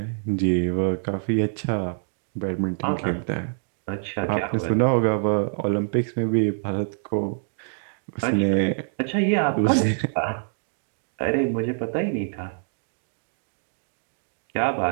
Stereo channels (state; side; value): silent; left; digital silence